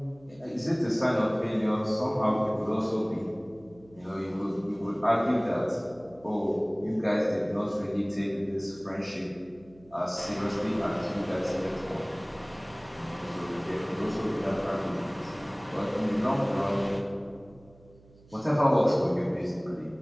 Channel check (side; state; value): right; noise; hum, 26 dB below the sound